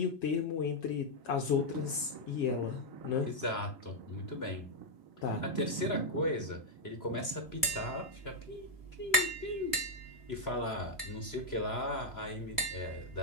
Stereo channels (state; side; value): late; right; 2.7 ms